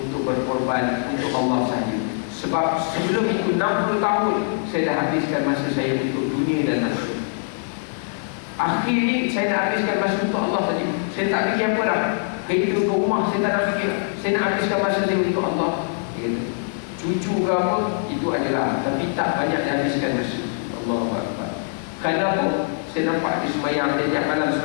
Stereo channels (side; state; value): right; silent; 64 dB below the other